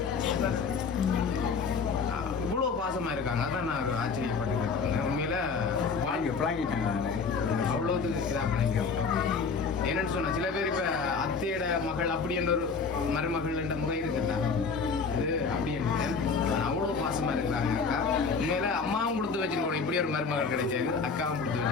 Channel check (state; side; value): quieter; right; 5.2 dB